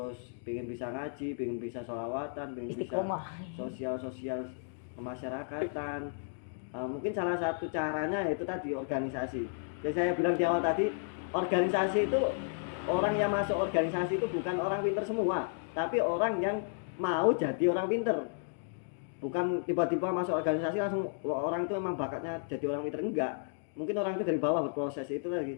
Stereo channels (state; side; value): silent; right; digital silence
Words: pengen bisa ngaji, pengen bisa sholawatan, pengen bisa Istiqomah. sosial kemasyarakatan, mungkin salah satu caranya itu tadi organisasi. Jadi saya bilang di awal tadi, organisasi itu, orang yang masuk organisasi itu bukan orang pinter semua, tapi orang yang mau jadi orang pinter. Bukan tiba-tiba masuk organisasi langsung orang itu memang bakatnya jadi orang pinter, enggak. Mungkin orang itu dari bawah berproses itu